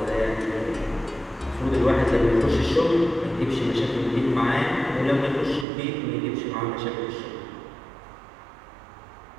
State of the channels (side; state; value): left; drops out; at 5.7 s